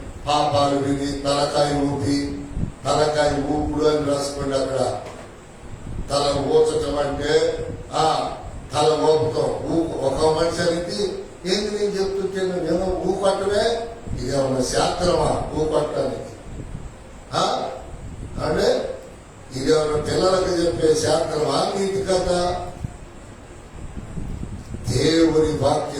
పాపాలు విని తలకాయ ఊపుడు అని రాసుకోండి. అక్కడ తల ఊచటం అంటే తల ఊపుతాం. ఒక మనిషికి ఏంది నేను చెప్తుంటే నేను ఊకొట్టమే, ఇదేమన్నా శాస్త్రమా ఊకొట్టడానికి? అంటే ఇదేమన్నా పిల్లలకు చెప్పే శాస్త్రమా, నీతి కథ? దేవుని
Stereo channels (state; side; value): identical; both; correlation 1.00